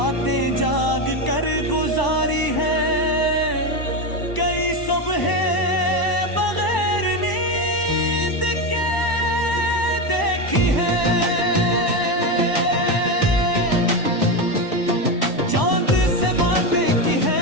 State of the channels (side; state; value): right; late; 1.0 ms